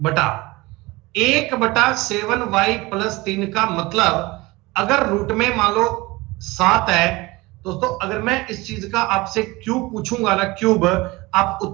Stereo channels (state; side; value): quieter; left; 22.1 dB